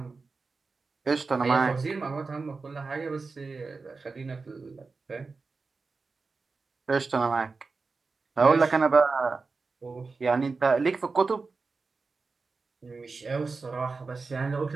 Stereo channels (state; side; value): quieter; left; 4.2 dB